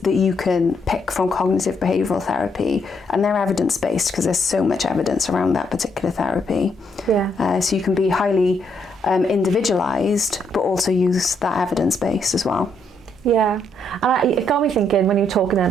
you can pick from cognitive behavioural therapy, and they're evidence-based because there's so much evidence around that particular therapy. So you can be highly individualised, but also use that evidence base as well. Yeah, and it got me thinking when you were talking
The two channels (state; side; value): normal; both; correlation 0.74